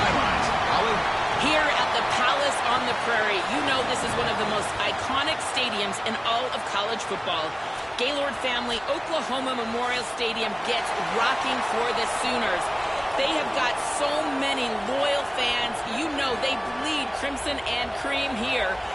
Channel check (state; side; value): identical; both; correlation 1.00